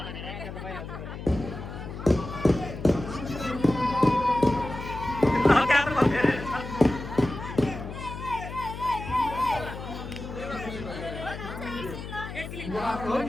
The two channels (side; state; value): left; noise; hum, 9 dB below the sound